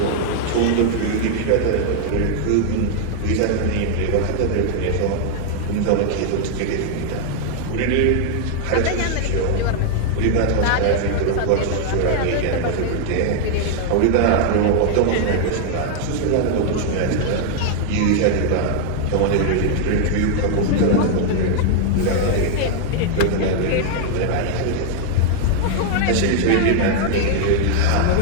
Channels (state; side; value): different; both; correlation 0.00